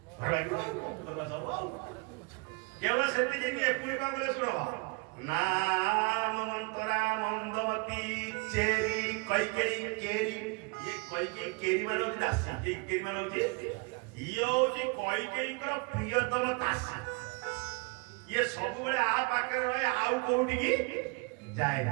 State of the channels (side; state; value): left; quieter; 30.2 dB